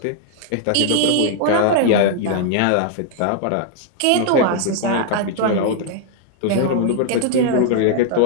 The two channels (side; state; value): both; different; correlation 0.00